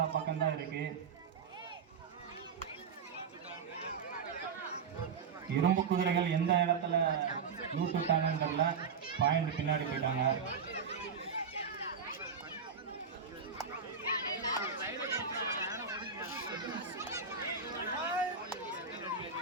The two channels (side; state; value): left; quieter; 5.9 dB